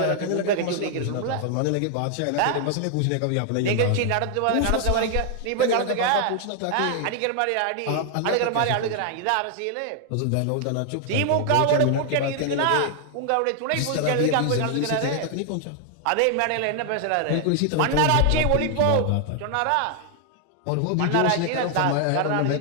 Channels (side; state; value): both; different; correlation 0.00